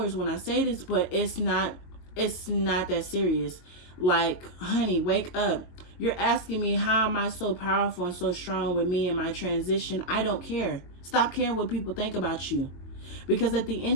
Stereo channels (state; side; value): late; right; 22 ms